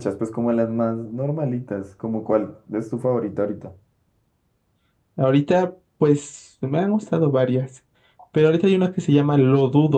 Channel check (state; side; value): identical; both; correlation 1.00